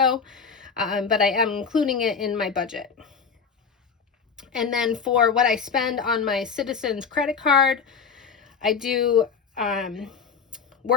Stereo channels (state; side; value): quieter; right; 6.0 dB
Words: but I am including it in my budget. And then for what I spend on my Citizens credit card, I do